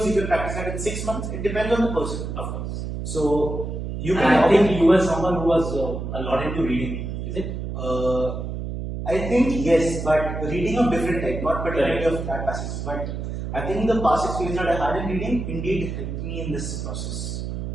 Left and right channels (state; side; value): noise; right; hum, 5 dB below the sound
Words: you can practice that in 6 months. It depends on the person, Of course. So you can. And I think you were someone who was a lot into reading, is it? I think yes, but reading of different type, not particularly of CLAT passages. But I think the past experience that I had in reading indeed helped me in this process.